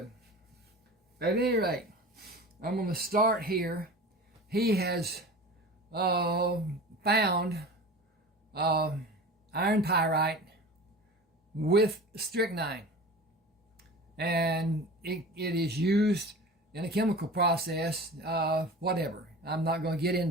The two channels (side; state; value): both; normal; correlation 0.36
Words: At any rate, I'm going to start here. He has found iron pyrite with strychnine, and it is used in a chemical process, whatever. I'm not going to get